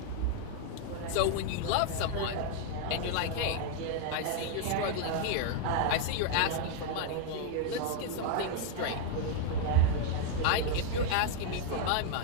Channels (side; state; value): both; different; correlation 0.00